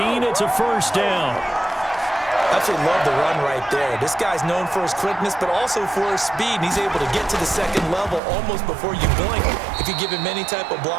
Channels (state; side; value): drops out; left; at 8.2 s